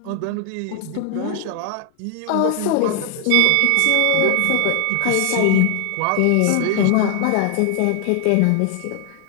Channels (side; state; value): both; different; correlation 0.00